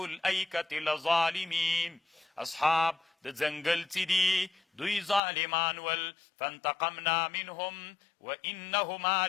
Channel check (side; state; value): right; drops out; at 5.2 s